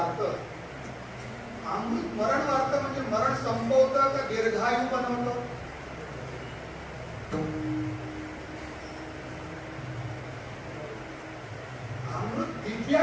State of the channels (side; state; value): both; identical; correlation 1.00